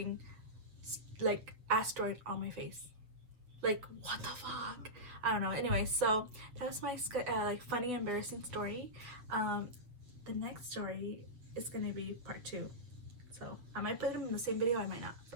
like asteroid on my face. Like, what the fuck? I don't know. Anyway, so that was my like funny, embarrassing story. The next story is gonna be part 2. So I might put them in the same video, I might not.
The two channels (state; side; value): late; left; 7.9 ms